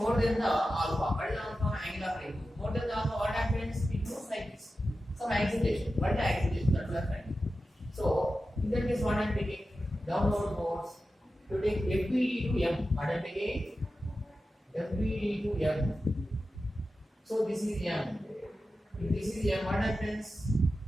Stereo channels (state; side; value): normal; both; correlation 0.92